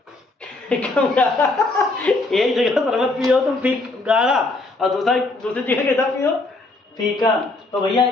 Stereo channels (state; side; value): quieter; right; 3.1 dB